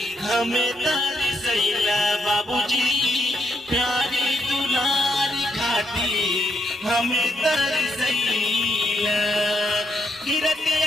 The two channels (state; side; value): normal; both; correlation 0.78